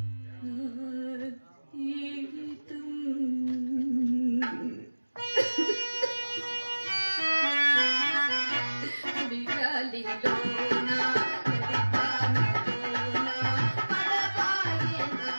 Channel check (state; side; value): inverted; both; correlation -1.00